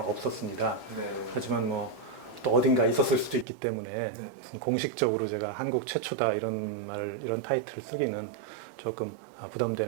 네. 하지만 또 어딘가 있었을 수도 있기 때문에 네. 공식적으로 제가 한국 최초다 이런 타이틀을 쓰기는 조금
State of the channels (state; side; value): drops out; left; at 3.5 s